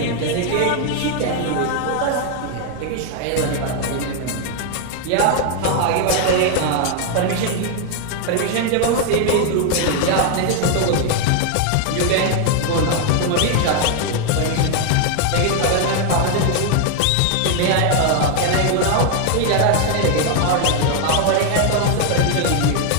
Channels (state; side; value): different; both; correlation 0.00